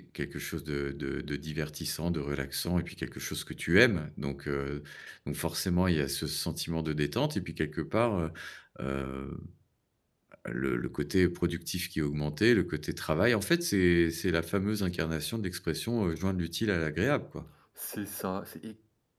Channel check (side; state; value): both; identical; correlation 1.00